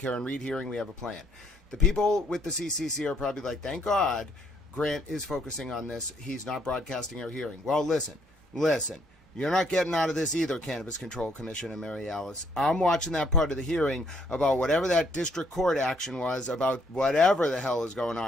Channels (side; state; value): both; normal; correlation 0.68